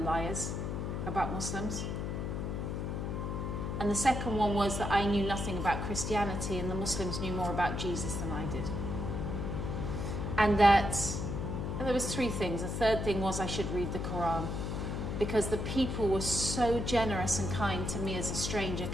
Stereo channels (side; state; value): left; noise; hum, 2 dB below the sound